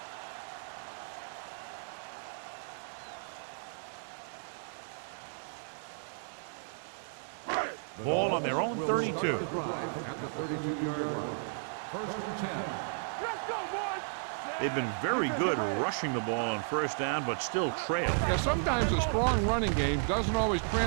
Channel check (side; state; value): left; silent; digital silence